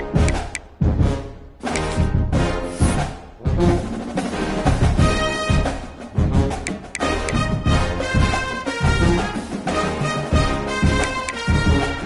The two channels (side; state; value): both; identical; correlation 1.00